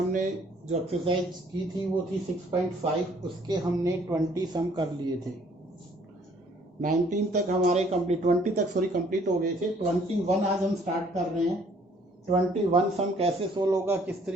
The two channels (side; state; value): both; normal; correlation 0.61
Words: जो एक्सरसाइज की थी वो थी 6.5। उसके हमने 20 सम कर लिए थे। 19 तक हमारे कंप्लीट 20 तक कंप्लीट हो गए थे। 21 आज हम स्टार्ट कर रहे हैं। 21 सम कैसे सोल्व होगा, किस